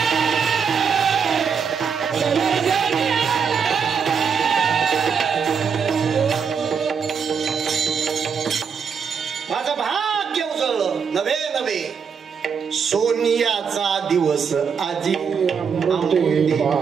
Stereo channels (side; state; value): left; quieter; 6.5 dB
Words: सोनियाचा दिवस आजी.